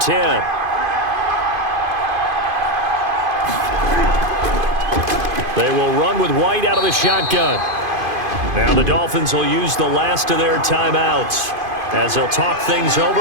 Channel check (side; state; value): left; late; 2.5 ms